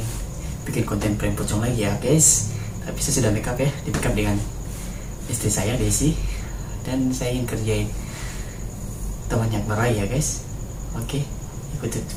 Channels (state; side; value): identical; both; correlation 1.00